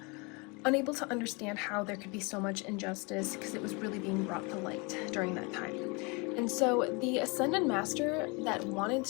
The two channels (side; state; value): right; quieter; 29.4 dB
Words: unable to understand how there could be so much injustice, because it was really being brought to light during that time. And so the Ascended Master that wanted